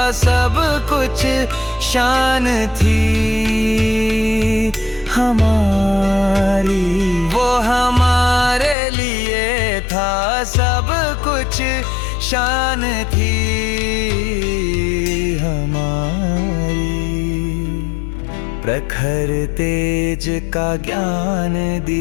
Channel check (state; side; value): drops out; right; at 8.8 s